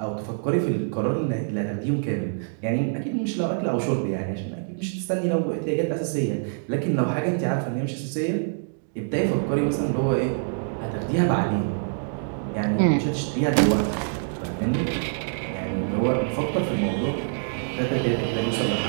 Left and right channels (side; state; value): left; silent; digital silence